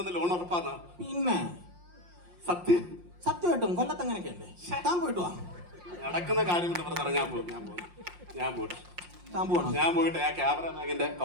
ലോൺ ഉറപ്പാന്നാ? പിന്നെ സത്യമായിട്ടും കൊല്ലത്ത് അങ്ങനെയൊക്കെയല്ലേ. താൻ പോയിട്ട് വാ. നടക്കുന്ന കാര്യം ഞാൻ പോയിട്ട് ആ ക്യാമറ ബാഗിന്റെ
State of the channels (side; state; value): left; late; 5.7 ms